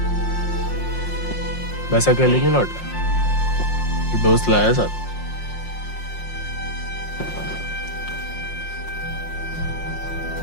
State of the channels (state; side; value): late; right; 5.6 ms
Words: वैसे अकेले नहीं लौट रहा, दोस्त लाया साथ।